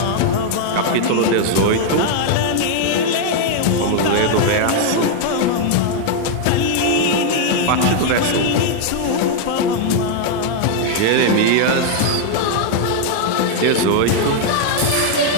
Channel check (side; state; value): both; different; correlation 0.00